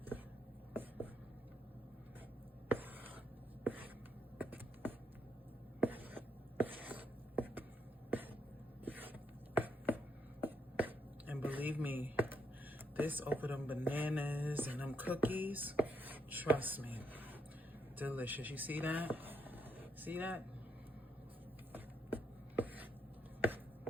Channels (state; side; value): normal; both; correlation 0.76